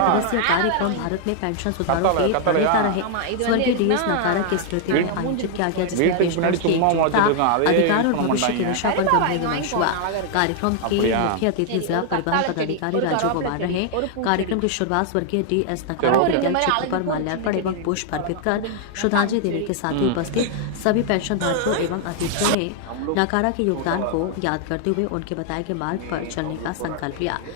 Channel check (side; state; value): both; different; correlation 0.00